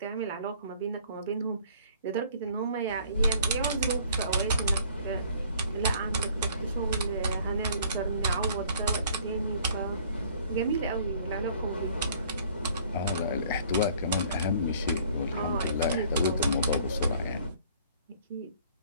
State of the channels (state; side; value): inverted; both; correlation -0.56